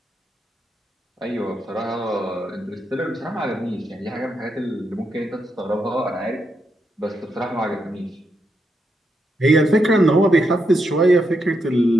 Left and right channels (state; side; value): normal; both; correlation 0.82